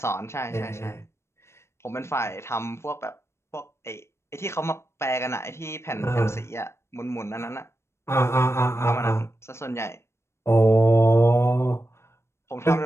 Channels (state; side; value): late; right; 0.13 ms